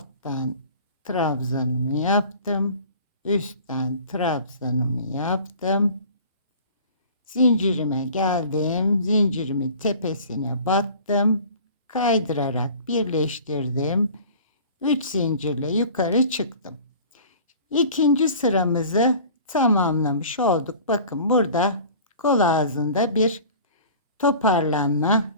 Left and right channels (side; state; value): both; inverted; correlation -0.44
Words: trabzanımı yaptım. Üstten trabzanımı yaptım. Zincirime geldim. Zincirimin tepesine battım. Kaydırarak birleştirdim. 3 zincirle yukarı çıktım. İkinci sıramızı tamamlamış olduk. Bakın burada kol ağzında bir toparlanma.